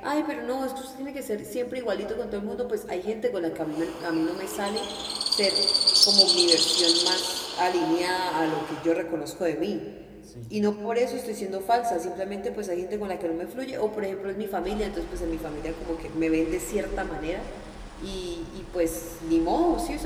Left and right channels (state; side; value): identical; both; correlation 1.00